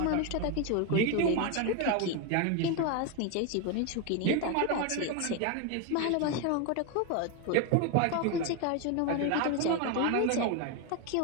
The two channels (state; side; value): different; both; correlation 0.02